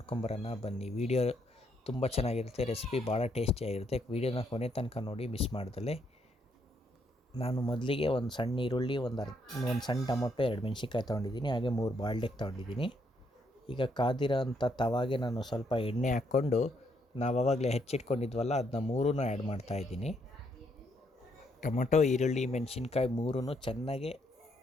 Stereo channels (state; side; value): normal; both; correlation 0.74